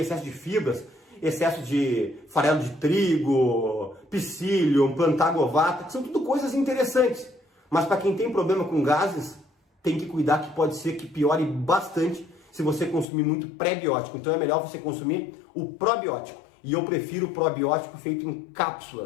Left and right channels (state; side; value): drops out; right; at 13.1 s